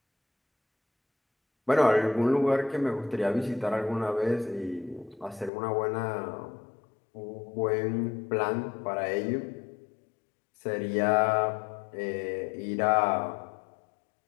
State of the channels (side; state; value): right; drops out; at 5.5 s